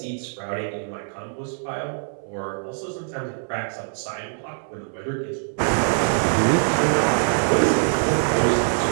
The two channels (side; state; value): left; silent; 63 dB below the other